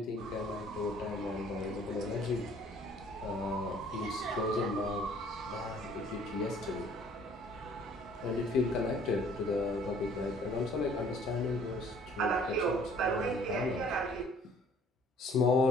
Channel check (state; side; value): normal; both; correlation 0.56